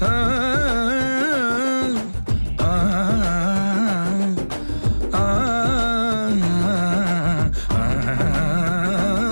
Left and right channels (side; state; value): both; inverted; correlation -1.00